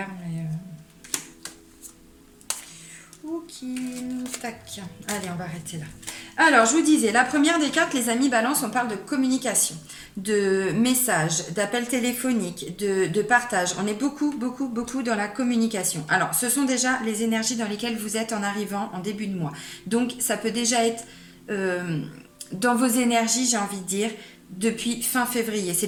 mais... Ok, tac. Allez, on va arrêter là. Alors, je vous disais, la première des cartes, les amis balance, on parle de communication, de messages, d'appels téléphoniques, de partage. On est beaucoup, beaucoup, beaucoup dans la communication. Alors, ce sont déjà les énergies dans lesquelles vous êtes en arrivant en début de mois. Donc, ça peut déjà être euh, dans vos énergies, j'ai envie de dire, depuis fin février. C'est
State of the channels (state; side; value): identical; both; correlation 1.00